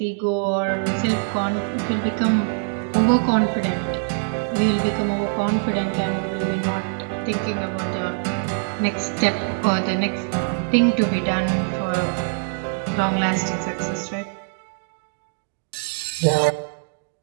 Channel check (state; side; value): silent; left; digital silence